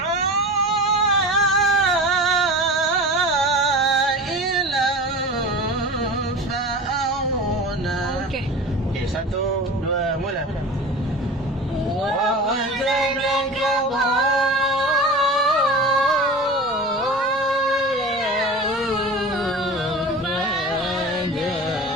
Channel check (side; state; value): both; normal; correlation 0.33